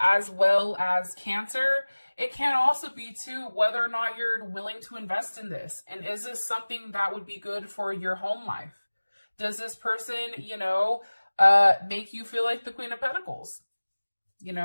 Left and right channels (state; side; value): inverted; both; correlation -1.00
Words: well as Cancer. It can also be too whether or not you're willing to invest in this. And is this something that would be good for your home life? Does this person, you know, make you feel like the Queen of Pentacles? You